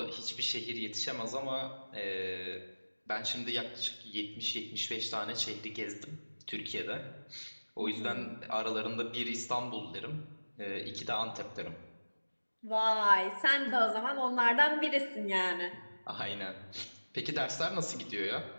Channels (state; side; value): inverted; both; correlation -1.00